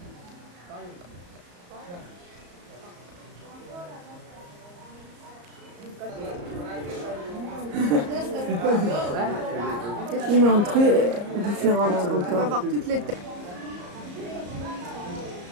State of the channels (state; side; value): late; left; 34 ms